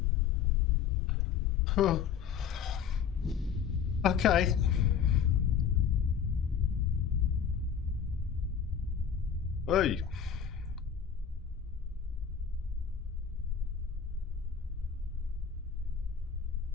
Huh. Okay. Hey.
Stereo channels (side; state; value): right; quieter; 7.6 dB